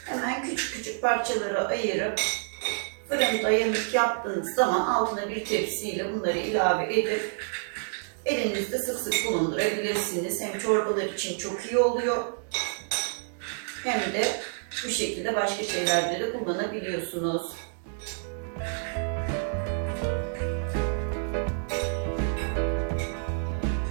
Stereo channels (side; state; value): left; silent; digital silence